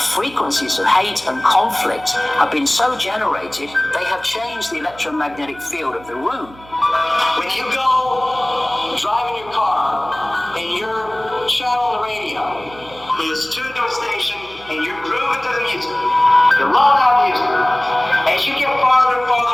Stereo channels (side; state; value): right; noise; hum, 22 dB below the sound